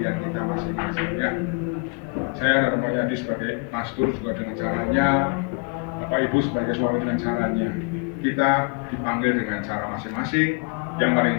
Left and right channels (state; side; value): quieter; right; 32.5 dB